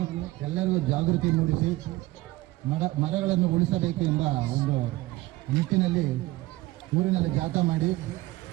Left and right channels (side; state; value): left; quieter; 18.7 dB